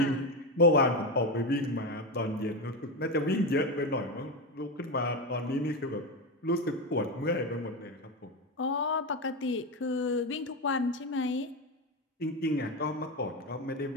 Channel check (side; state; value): both; normal; correlation 0.15